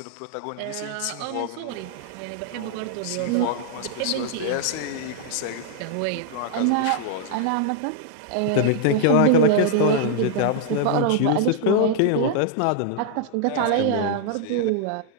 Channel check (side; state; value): both; different; correlation -0.01